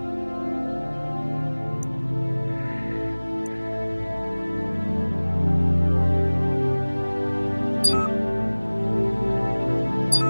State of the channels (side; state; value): both; inverted; correlation -1.00